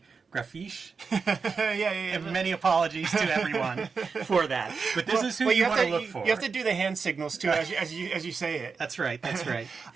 Grafiche. Yeah. And many apologies to everyone for that. But this is who you want to look for. You have to do the hand signals, too, as you say it. That's right.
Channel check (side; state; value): left; quieter; 5.1 dB